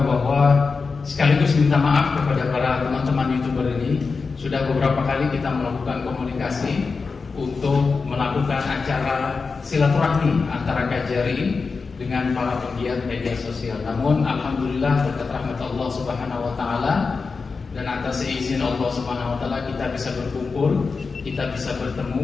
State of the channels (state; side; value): quieter; right; 4.6 dB